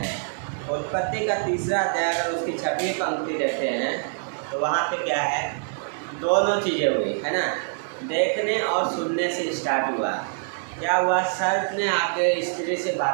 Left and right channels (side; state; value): left; silent; digital silence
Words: उत्पत्ति का 3रा अध्याय अगर उसकी 6वीं पंक्ति देखते हैं तो वहाँ पे क्या है, दोनों चीज़ें हुई, है ना। देखने और सुनने से स्टार्ट हुआ। क्या हुआ, सर्प ने आके स्त्री से